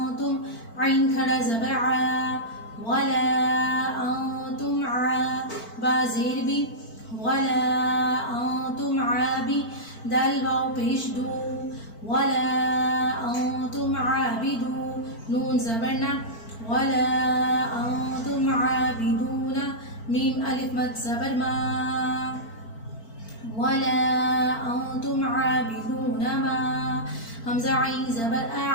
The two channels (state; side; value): late; right; 4.4 ms